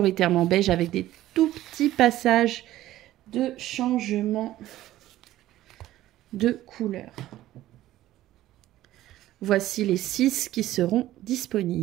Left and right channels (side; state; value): left; quieter; 14.6 dB